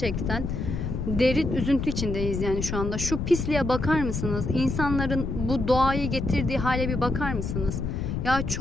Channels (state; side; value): noise; left; rumble, 3 dB below the sound